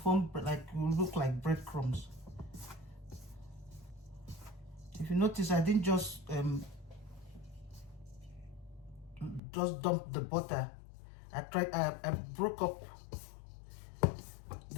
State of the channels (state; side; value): drops out; right; at 9.4 s